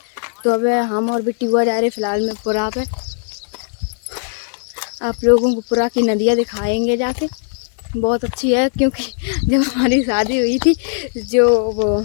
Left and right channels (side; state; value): right; silent; 67 dB below the other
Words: तो अब हम और बिट्टी हुआ जा रहे फिलहाल में पुरा पे। आप लोगों को पुरा की नदियाँ दिखाएंगे जाके, बहुत अच्छी है। क्योंकि जब हमारी शादी हुई थी जो वो